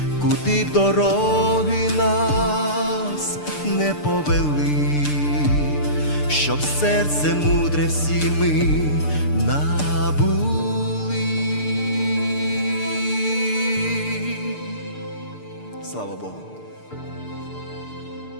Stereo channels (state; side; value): late; right; 6.7 ms